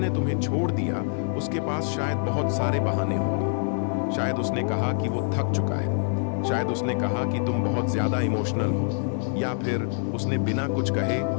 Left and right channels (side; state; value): right; silent; digital silence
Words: तुम्हें छोड़ दिया उसके पास शायद बहुत सारे बहाने होंगे। शायद उसने कहा कि वो थक चुका है, शायद उसने कहा कि तुम बहुत ज्यादा इमोशनल हो, या फिर उसने बिना कुछ कहे